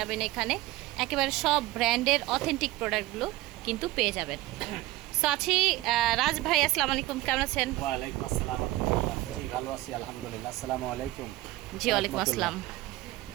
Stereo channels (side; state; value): left; quieter; 18.2 dB